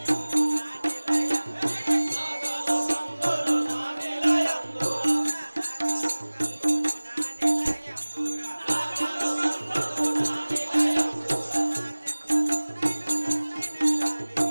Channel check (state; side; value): inverted; both; correlation -1.00